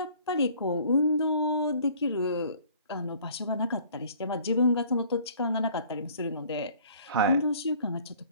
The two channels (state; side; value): inverted; both; correlation -0.54